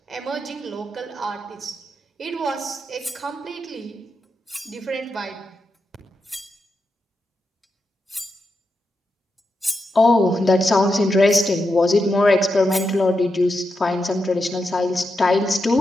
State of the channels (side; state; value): both; normal; correlation 0.86